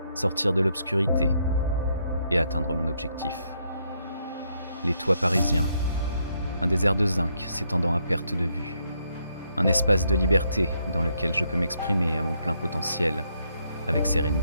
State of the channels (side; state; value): both; inverted; correlation -0.75